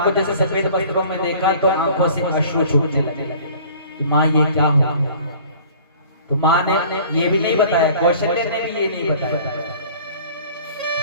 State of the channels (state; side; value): inverted; both; correlation -0.48